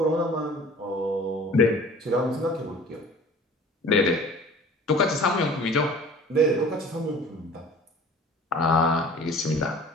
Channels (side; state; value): both; normal; correlation 0.46